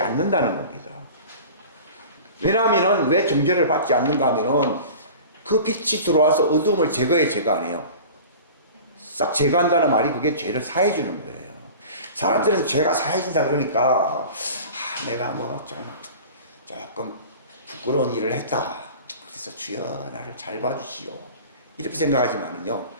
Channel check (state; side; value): inverted; both; correlation -0.39